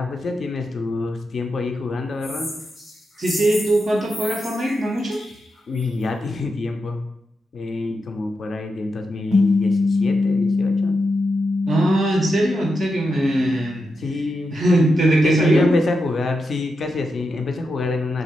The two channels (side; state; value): both; normal; correlation 0.87